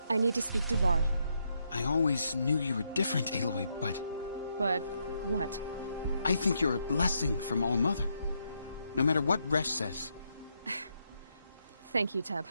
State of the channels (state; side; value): inverted; both; correlation -0.79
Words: I need to speak to Varl. I always knew you were different, Aloy, but... But what? I think you're a blessing from All-Mother. No matter what Resh says. Thank you, Teb.